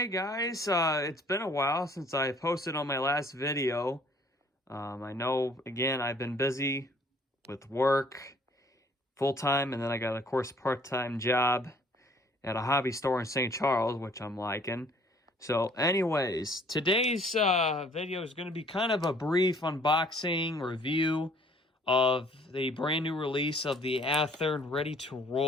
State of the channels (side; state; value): both; normal; correlation 0.58